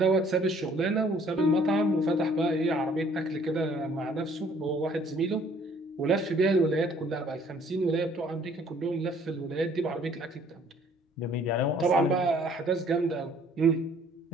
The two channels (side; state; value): both; normal; correlation 0.59